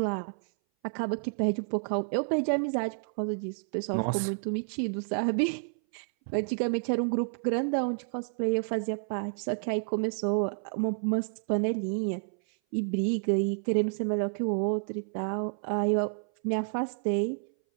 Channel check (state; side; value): silent; left; 58 dB below the other